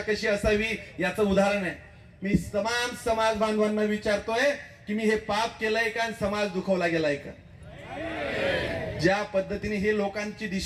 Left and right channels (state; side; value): identical; both; correlation 1.00